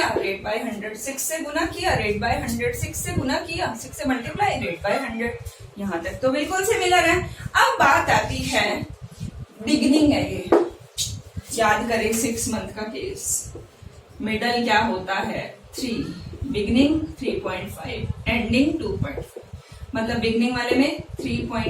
रेट बाय 100, 6 से गुना किया, रेट बाय 100, 6 से गुना किया, 6 से मल्टीप्लाई, रेट बाय 100। यहाँ तक तो बिल्कुल सिमिलर है। अब बात आती है, बिगिनिंग है ये, याद करें 6 मंथ का केस। मिडल क्या होता है? 3, बिगिनिंग 3.5, एंडिंग 2.5। मतलब बिगिनिंग वाले में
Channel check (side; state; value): both; identical; correlation 1.00